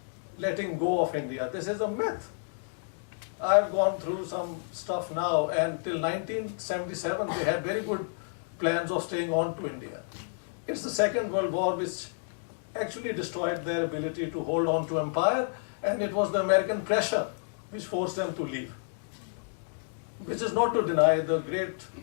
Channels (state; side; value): silent; right; digital silence